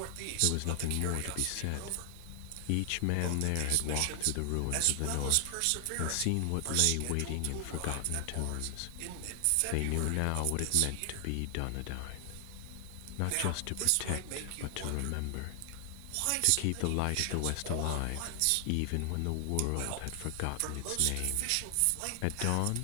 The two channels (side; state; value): both; different; correlation 0.00